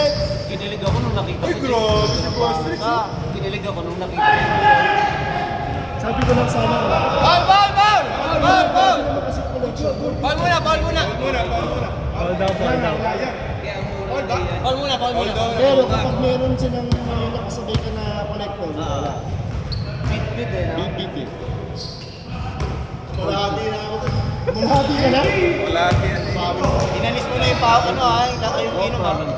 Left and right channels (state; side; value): identical; both; correlation 1.00